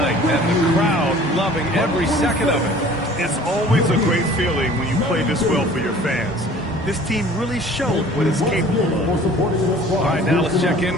and the crowd loving every second of it. It's always a great feeling when you play this well for your fans. This team really showed what it's capable of. All right, now let's check in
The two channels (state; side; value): normal; both; correlation 0.49